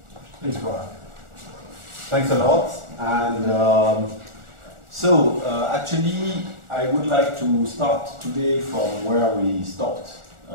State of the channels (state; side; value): late; left; 1.4 ms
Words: Please go on. Thanks a lot. And actually, I would like to start today from where we stopped